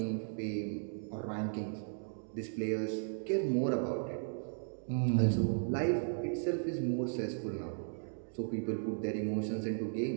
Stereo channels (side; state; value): left; silent; digital silence